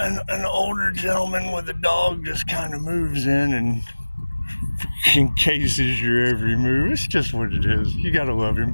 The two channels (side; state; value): both; inverted; correlation -1.00